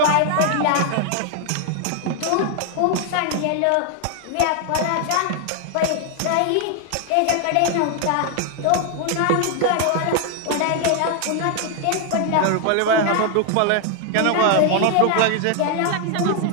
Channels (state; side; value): different; both; correlation 0.00